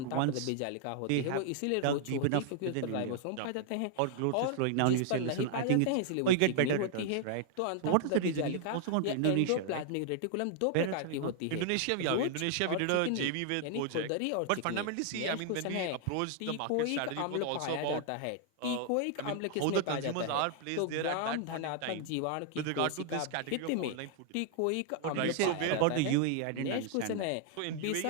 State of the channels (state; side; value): different; both; correlation 0.00